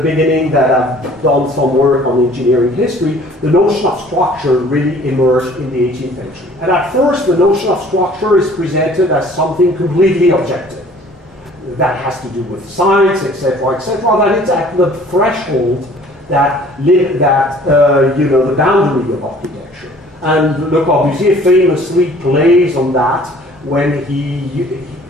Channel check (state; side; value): normal; both; correlation 0.52